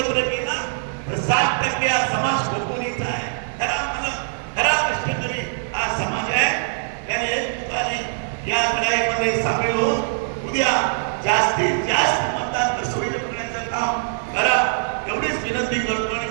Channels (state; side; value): silent; left; digital silence